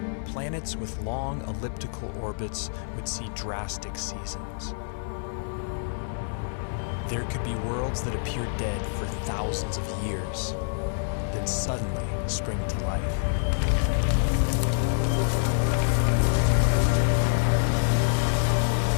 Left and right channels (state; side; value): silent; right; 60 dB below the other